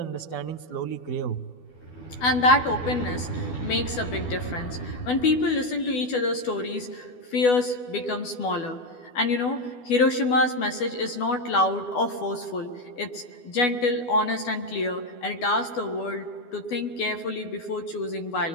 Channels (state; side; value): late; right; 12 ms